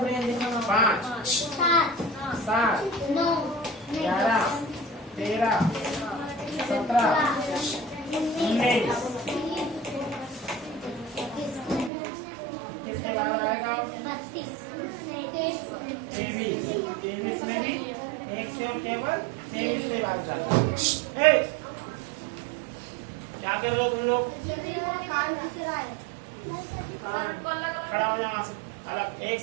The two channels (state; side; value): drops out; left; at 11.9 s